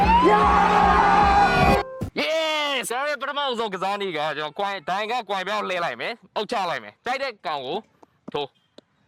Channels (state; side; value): identical; both; correlation 1.00